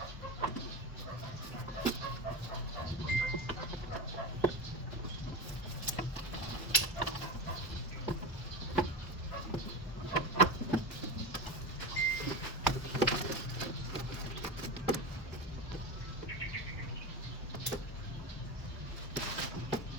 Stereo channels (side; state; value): both; normal; correlation 0.23